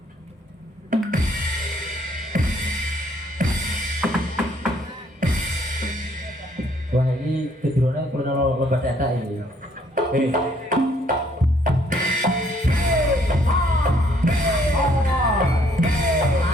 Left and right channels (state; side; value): normal; both; correlation 0.65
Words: Wah, ini kedurunnya perlu lebat data ini.